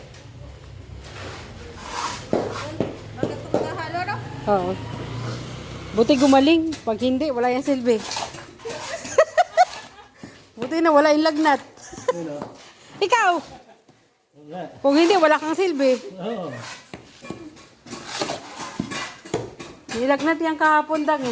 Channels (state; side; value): identical; both; correlation 1.00